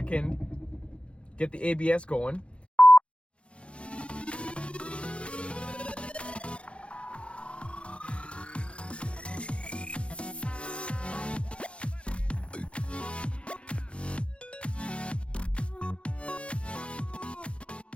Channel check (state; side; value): late; right; 0.059 ms